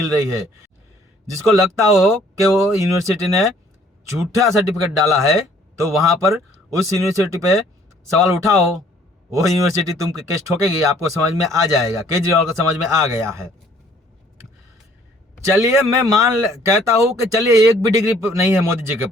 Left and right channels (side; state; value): both; normal; correlation 0.59